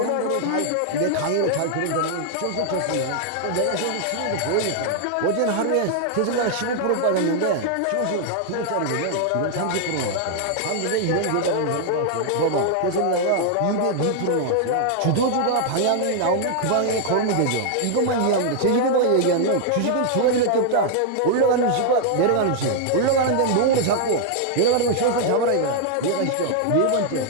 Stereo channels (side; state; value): both; different; correlation -0.01